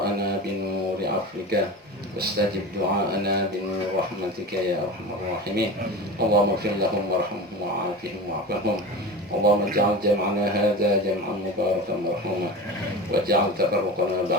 بنور عفوك، واستجب دعاءنا بنور رحمتك يا أرحم الراحمين. اللهم اغفر لهم وارحمهم وعافهم واعف عنهم. اللهم اجعل جمعنا هذا جمعا مباركا مرحوما، واجعل تفرقنا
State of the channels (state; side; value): normal; both; correlation 0.31